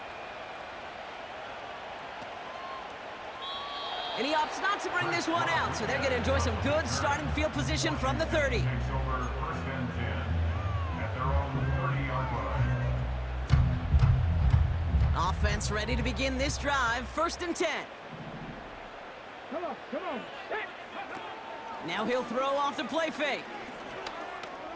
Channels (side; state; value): both; identical; correlation 1.00